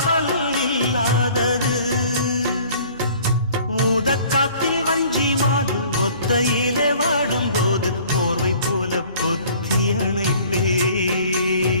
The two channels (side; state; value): both; inverted; correlation -0.52